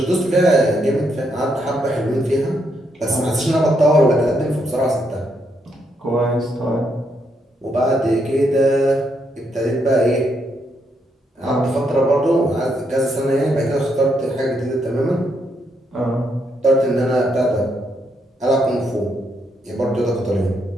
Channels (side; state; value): both; normal; correlation 0.77